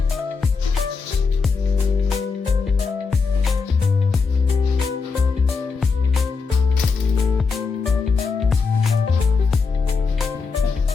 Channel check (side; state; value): right; quieter; 4.8 dB